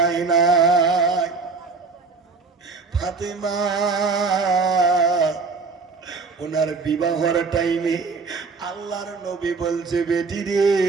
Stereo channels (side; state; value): left; quieter; 4.5 dB